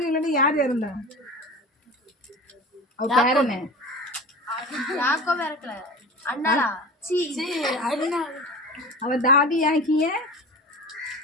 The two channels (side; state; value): both; normal; correlation 0.33